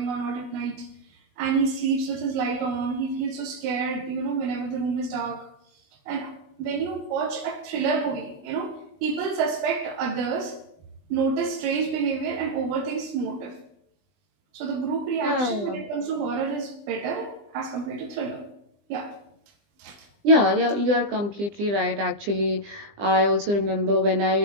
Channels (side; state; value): left; late; 20 ms